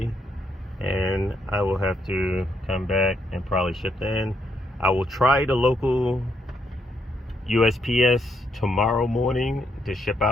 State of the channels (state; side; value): normal; both; correlation 0.75